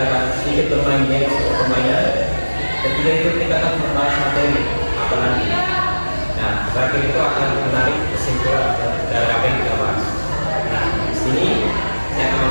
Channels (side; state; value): both; inverted; correlation -1.00